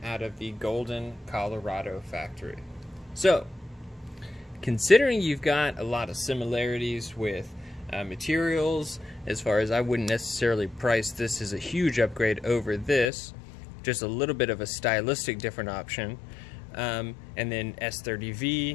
out of the Golden, Colorado factory. So, considering you've got a lot of similarities with materials, as far as I wouldn't necessarily price this as a huge upgrade over this, just a little bit of a stylistic different option. And then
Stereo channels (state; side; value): drops out; right; at 13.1 s